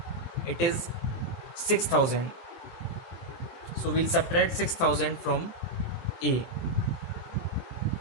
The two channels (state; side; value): late; right; 23 ms